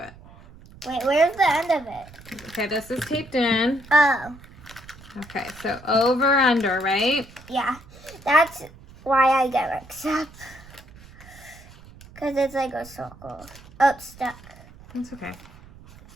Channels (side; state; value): right; noise; rumble, 21 dB below the sound